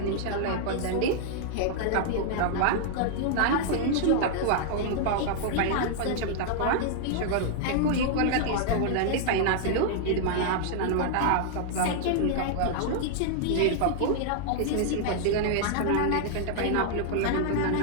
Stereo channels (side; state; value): both; different; correlation -0.01